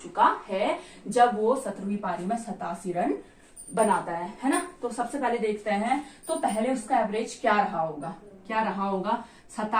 चुका है, जब वो 17वीं पारी में 87 रन बनाता है ना। तो सबसे पहले देखते हैं, तो पहले उसका एवरेज क्या रहा होगा,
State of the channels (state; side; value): identical; both; correlation 1.00